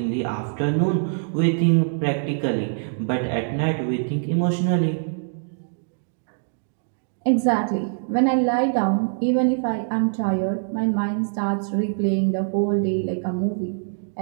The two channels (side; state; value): left; silent; digital silence